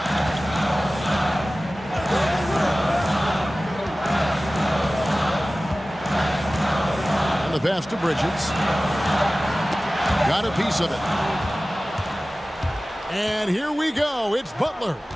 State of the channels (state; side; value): normal; both; correlation 0.97